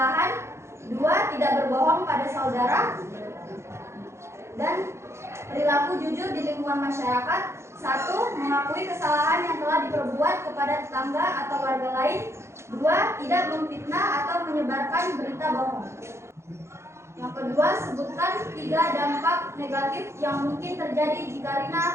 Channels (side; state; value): left; late; 0.13 ms